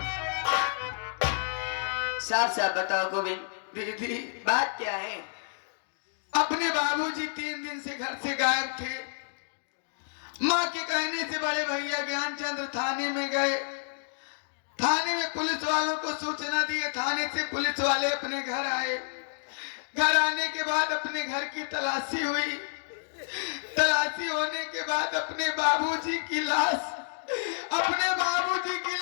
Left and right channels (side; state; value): right; silent; digital silence